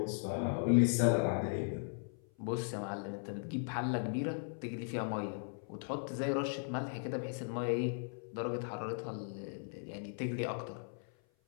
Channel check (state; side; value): silent; right; 53 dB below the other